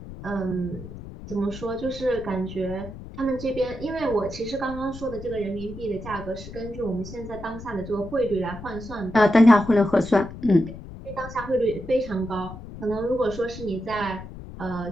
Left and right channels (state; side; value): noise; left; rumble, 13 dB below the sound